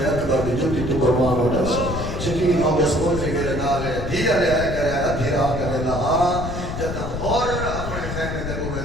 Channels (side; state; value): left; noise; rumble, 5 dB below the sound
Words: اکبر دی جوتی تو قربان ہو جا سا یقین ہو گیا سکول میرے نالے دیا لے آئے کرے ادھی راہ کرے لہا جتا اور اپنے خیمے دے